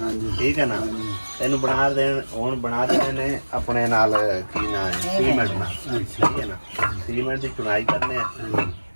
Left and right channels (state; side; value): inverted; both; correlation -1.00